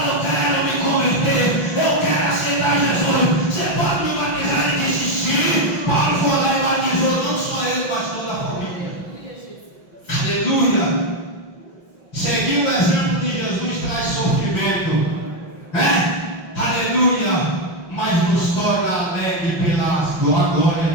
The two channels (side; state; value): right; late; 5.6 ms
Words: eu quero me converter, eu quero aceitar Jesus, você pode me batizar? Ele disse: sim. Paulo foi lá e batizou, não só ele, mas toda a família. Aleluia. Seguir o exemplo de Jesus traz sofrimento, aleluia, mas nos torna alegre pela glória